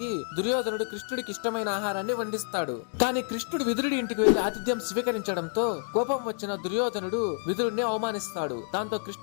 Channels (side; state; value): right; silent; 56 dB below the other